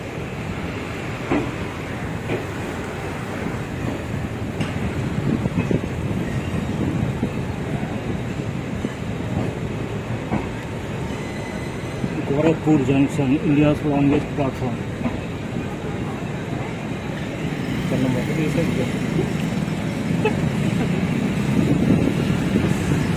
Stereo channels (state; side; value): identical; both; correlation 1.00